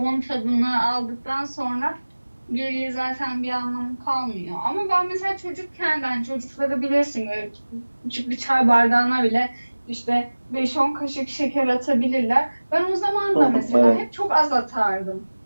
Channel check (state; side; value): inverted; both; correlation -1.00